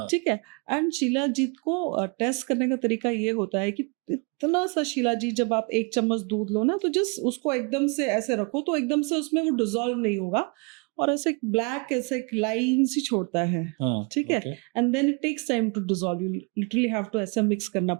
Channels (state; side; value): quieter; left; 32.7 dB